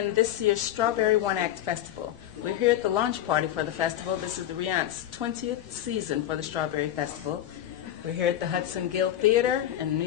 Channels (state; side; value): quieter; right; 12.1 dB